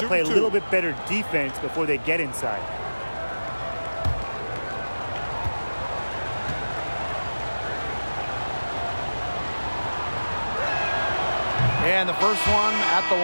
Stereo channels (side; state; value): both; inverted; correlation -1.00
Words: to play a little bit better defense before they get inside. And the first one at the